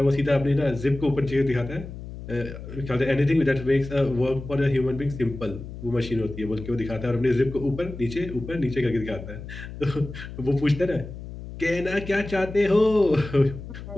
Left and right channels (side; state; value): left; noise; hum, 11 dB below the sound